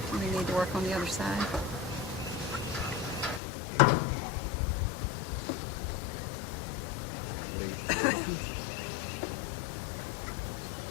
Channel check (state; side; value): drops out; right; at 3.4 s